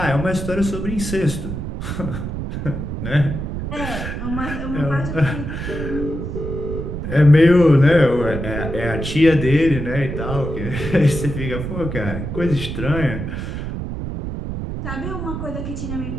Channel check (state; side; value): noise; right; rumble, 5 dB below the sound